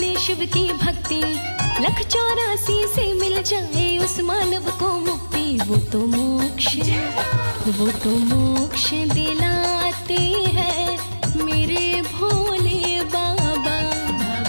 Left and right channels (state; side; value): inverted; both; correlation -1.00